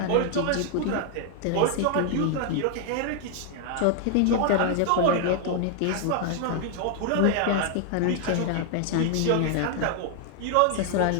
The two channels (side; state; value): both; different; correlation 0.00